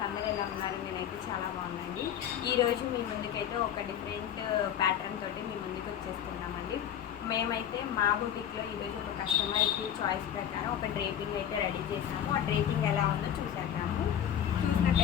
అందరూ ఎలా ఉన్నారు? నేనైతే చాలా బాగున్నానండి. ఈరోజు మీ ముందుకైతే ఒక డిఫరెంట్ ప్యాటర్న్ తోటి మీ ముందుకు వచ్చేస్తున్నామండి. మేమైతే మా బుటిక్లో ఈరోజు ఒక కస్టమర్కి చాయిస్ ప్రకారం ఒక డ్రేపింగ్ అయితే రెడీ చేసాము. ఆ డ్రేపింగ్ ఎలా ఉందో చూసేద్దాము.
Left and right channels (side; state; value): right; quieter; 9.8 dB